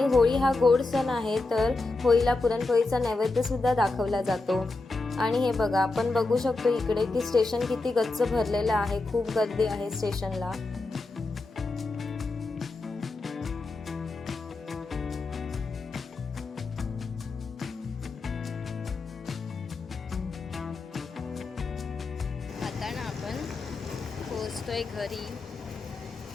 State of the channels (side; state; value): right; quieter; 3.3 dB